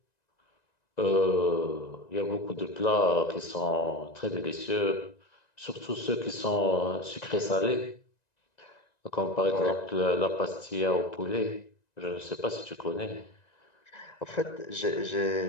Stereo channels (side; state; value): right; late; 1.9 ms